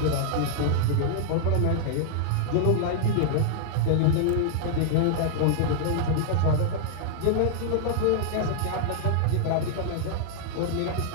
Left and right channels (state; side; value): different; both; correlation -0.01